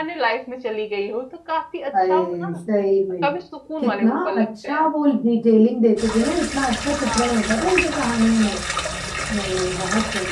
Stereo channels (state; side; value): identical; both; correlation 1.00